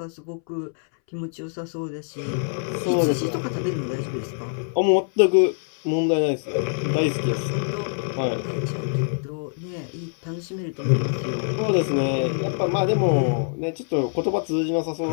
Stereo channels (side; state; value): right; silent; 62 dB below the other